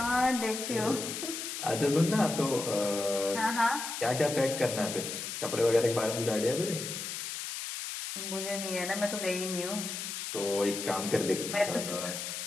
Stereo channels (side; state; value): left; noise; hiss, 5 dB below the sound